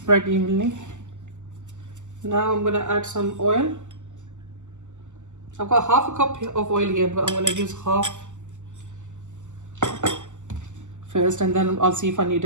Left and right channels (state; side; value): late; left; 0.84 ms